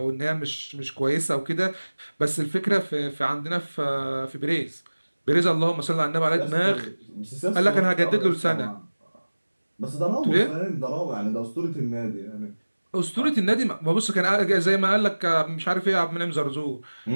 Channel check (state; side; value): inverted; both; correlation -1.00